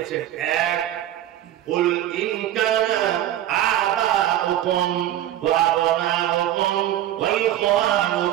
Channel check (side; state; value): left; quieter; 12.6 dB